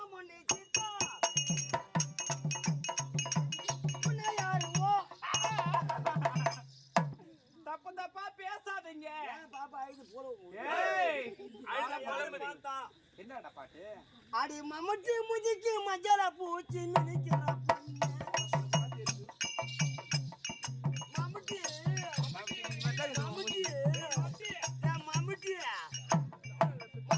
moni cita. Mana yaru? தப்பு தப்பா பேசாதீங்க. பாப்பா இது போறோம். ஏய், அட போலமடி. என்னடா பாட்டு? அடி மம்மட்டி முதிக்கு மஞ்சள பூச்சி மினிக்கிற பொண்ணு. மம்மட்டி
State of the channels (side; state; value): both; identical; correlation 1.00